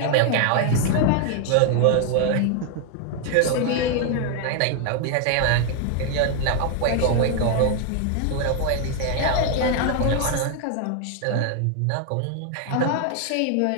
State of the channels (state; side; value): different; both; correlation 0.00